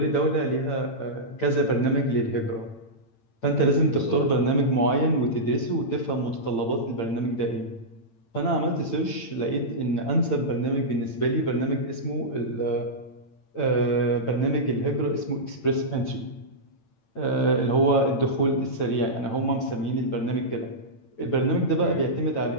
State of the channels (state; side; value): late; right; 8.9 ms